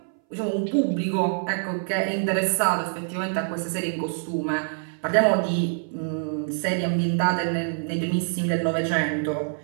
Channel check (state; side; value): silent; left; 60 dB below the other